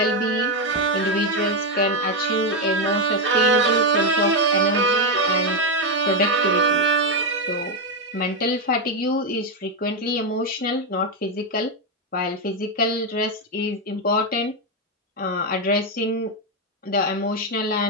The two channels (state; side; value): normal; both; correlation 0.05